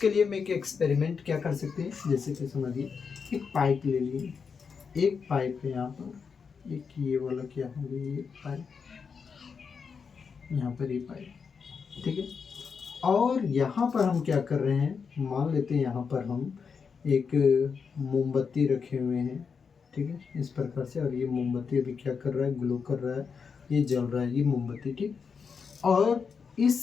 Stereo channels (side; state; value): right; quieter; 5.8 dB